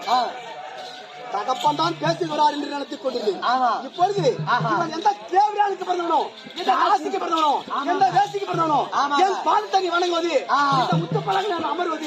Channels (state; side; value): identical; both; correlation 1.00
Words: தகப்பன் தான் பேசுகிறார் என்று நினைத்துக் கொண்டிருந்தேன். இப்பொழுது இவன் எந்த தேவையானுக்கு பிறந்தவனோ, எந்த ராசிக்கு பிறந்தவனோ, எந்த வேசிக்கு பிறந்தவனோ, என் பால் தண்ணி வணங்குவது, இந்த முத்து பழக நான்